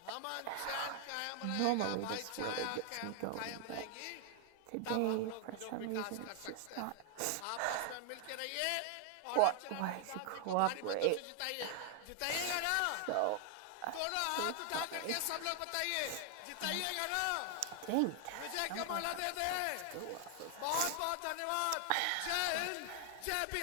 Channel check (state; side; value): different; both; correlation 0.00